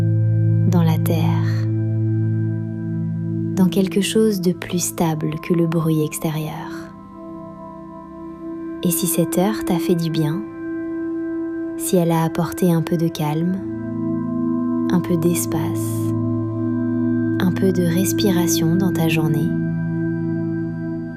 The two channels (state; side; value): identical; both; correlation 1.00